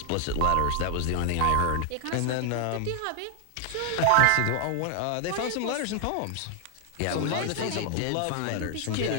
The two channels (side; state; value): both; different; correlation 0.00